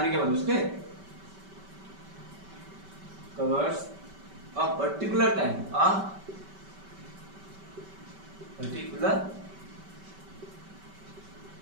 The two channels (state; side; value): late; left; 5.2 ms